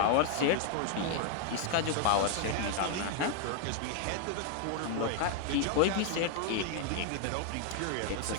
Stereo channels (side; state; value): both; different; correlation 0.00